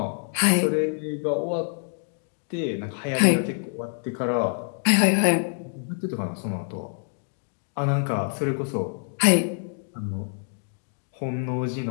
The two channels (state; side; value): silent; right; digital silence